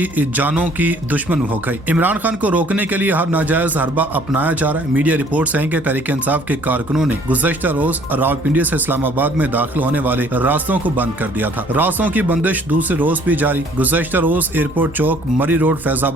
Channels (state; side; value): normal; both; correlation 0.57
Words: जानों की दुश्मन हो गई। इमरान खान को रोकने के लिए हर नाजायज हरबा अपनाया जा रहा है। मीडिया रिपोर्ट्स हैं कि तहरीक इंसाफ के कारकुनों ने गुज़श्ता रोज रावलपिंडी से इस्लामाबाद में दाखिल होने वाले रास्तों को बंद कर दिया था। रास्तों की बंदिश दूसरे रोज भी जारी। गुज़श्ता रोज एयरपोर्ट चौक, मरी रोड,